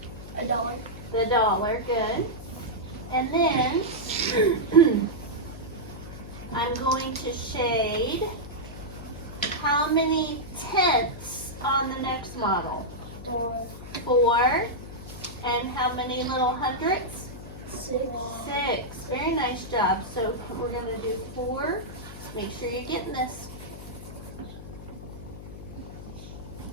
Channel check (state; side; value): noise; left; hum, 13 dB below the sound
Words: $1. The dollar, good. And then I'm going to shade how many tenths on the next model? 4. And how many little hundredths? 6. 6. Very nice job. So we're going to do 4. Make sure you're getting this.